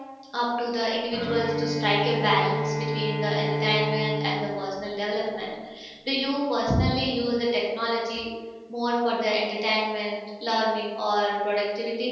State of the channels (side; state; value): both; identical; correlation 1.00